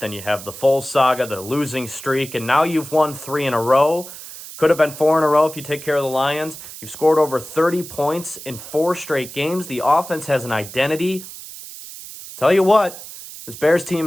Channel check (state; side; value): noise; right; hiss, 13 dB below the sound